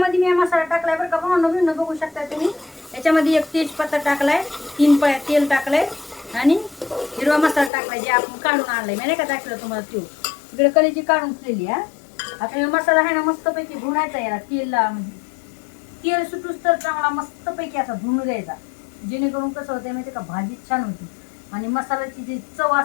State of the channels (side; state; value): right; drops out; at 7.7 s